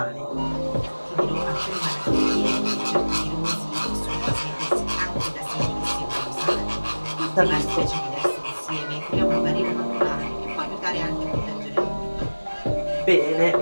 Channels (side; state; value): both; inverted; correlation -1.00